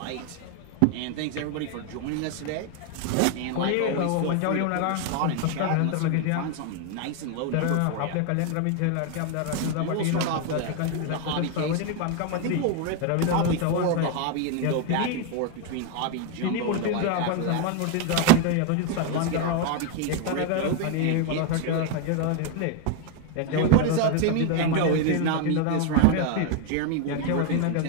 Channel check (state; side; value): different; both; correlation 0.01